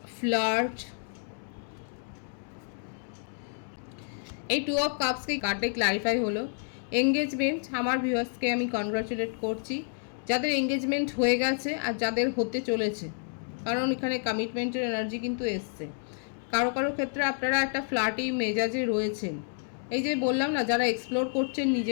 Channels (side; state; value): right; silent; 58 dB below the other